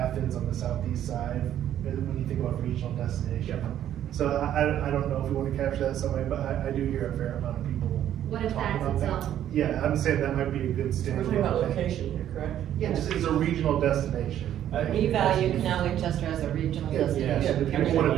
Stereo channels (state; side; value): quieter; left; 11.1 dB